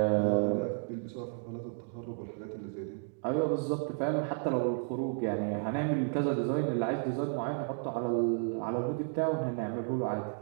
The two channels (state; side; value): silent; left; 56 dB below the other